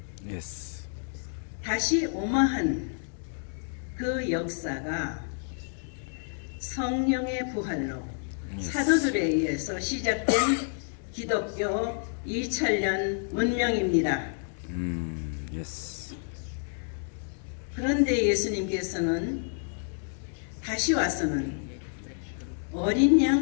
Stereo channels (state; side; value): silent; right; 58 dB below the other